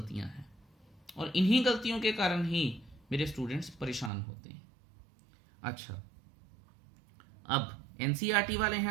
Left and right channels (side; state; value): left; drops out; at 4.1 s